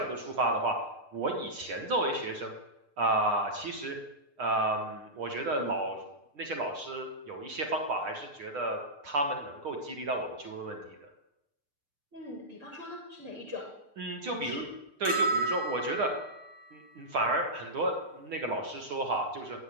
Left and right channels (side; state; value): left; late; 6.7 ms